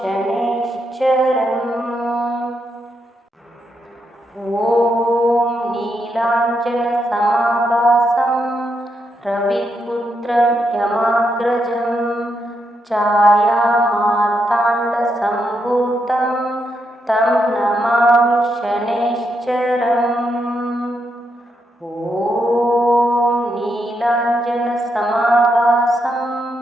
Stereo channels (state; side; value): normal; both; correlation 0.81